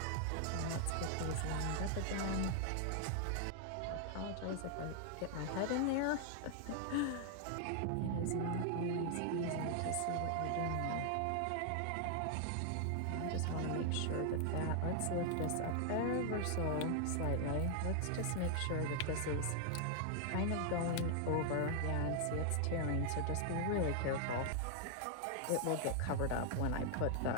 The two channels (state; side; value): different; both; correlation 0.00